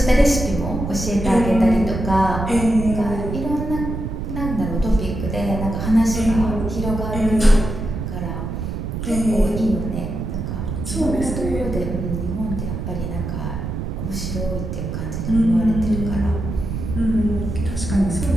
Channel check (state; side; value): noise; right; rumble, 4 dB below the sound